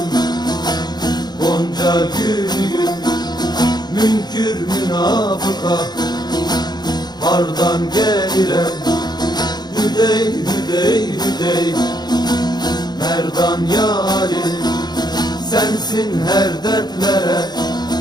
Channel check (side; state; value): right; late; 0.20 ms